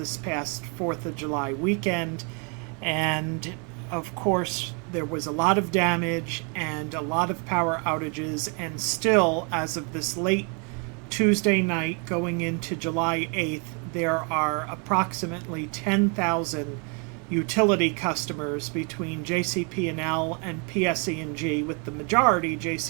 past 4th of July weekend. And of course, there was a lot of damage and a lot of power outages, and still, as of this late Tuesday night going into July 8th, there are approximately 10,000 utility customers between JCP&L and PSE&G, with the majority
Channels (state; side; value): quieter; left; 35.9 dB